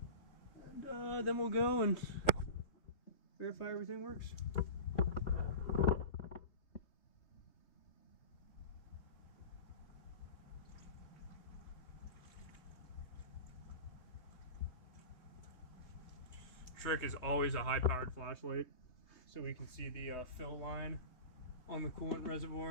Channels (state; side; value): late; right; 3.3 ms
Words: and then we'll go and verify everything works. Trick is always a high-powered flashlight, so we can see the fill line on the coolant